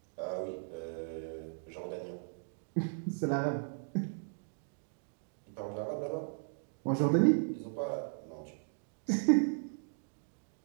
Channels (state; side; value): silent; left; digital silence